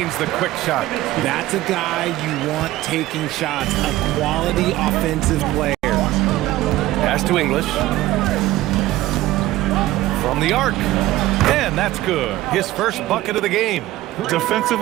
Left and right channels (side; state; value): left; quieter; 16.1 dB